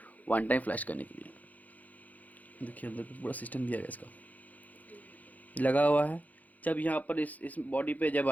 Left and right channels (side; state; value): right; late; 0.078 ms